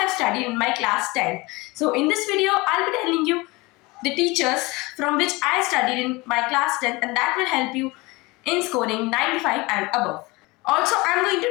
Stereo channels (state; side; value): quieter; right; 23.5 dB